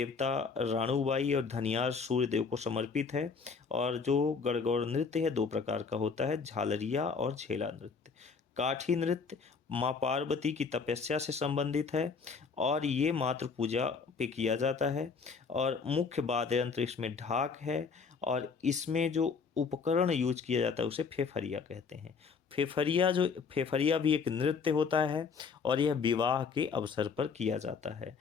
राणूबाई और धनियार सूर्यदेव को समर्पित है। और जो गणगौर नृत्य है 2 प्रकार का होता है, झालरिया और झेला नृत्य। काठी नृत्य माँ पार्वती की तपस्या से संबंधित है और ये मातृ पूजा पे किया जाता है। और मुख्य वाद्य यंत्र इसमें ढाक है और इसमें जो उपकरण यूज किया जाता है उसे फेफरिया कहते हैं। फेफरिया भी एक नृत्य होता है और यह विवाह के अवसर पर किया जाता है।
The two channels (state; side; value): quieter; right; 5.3 dB